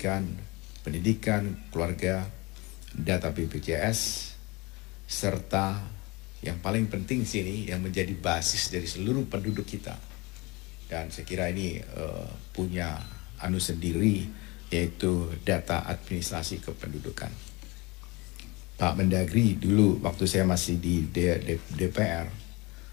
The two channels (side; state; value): right; quieter; 24.8 dB